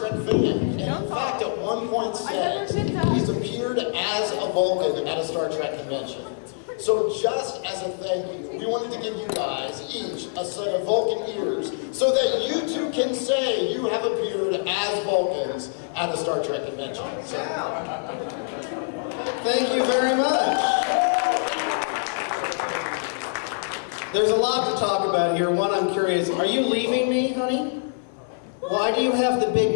fan. And in fact, at one point said he's appeared as a Vulcan at a Star Trek convention. So just as a thank you, we wanted to give you guys each a set of Vulcan ears so that you too can say you have appeared as Vulcans at a Star Trek convention. So, thank you very much. There's a lot to talk about here. One, I'm curious, are you leaving me, honey? Why do you have the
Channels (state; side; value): silent; right; 62 dB below the other